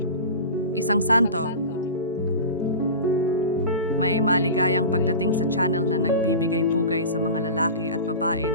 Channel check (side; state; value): both; inverted; correlation -0.31